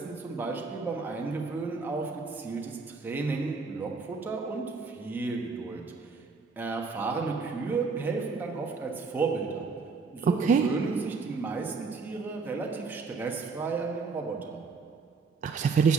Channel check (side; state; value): left; quieter; 4.6 dB